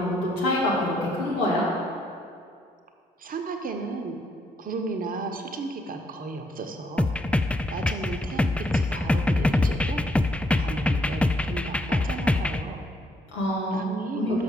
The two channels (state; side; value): normal; both; correlation 0.72